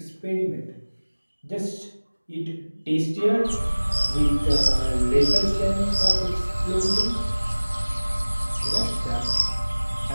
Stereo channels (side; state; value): both; inverted; correlation -1.00